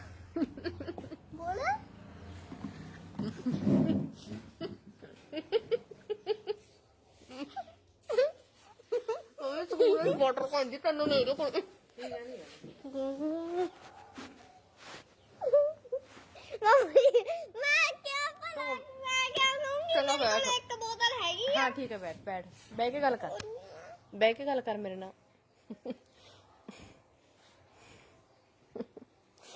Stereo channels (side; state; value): both; identical; correlation 1.00